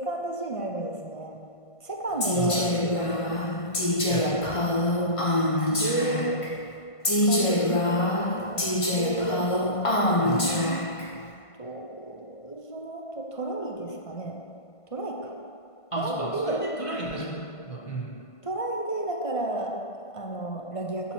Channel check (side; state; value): right; late; 1.5 ms